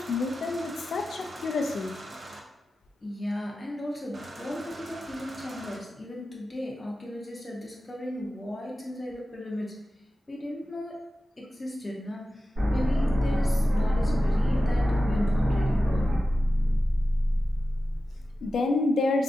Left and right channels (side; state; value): both; normal; correlation 0.93